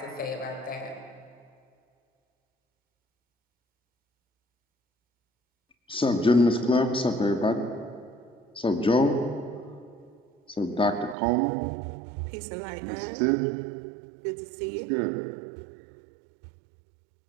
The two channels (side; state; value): left; drops out; at 11.2 s